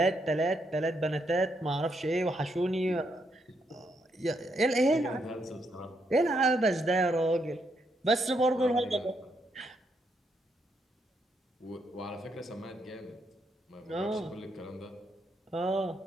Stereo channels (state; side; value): normal; both; correlation 0.77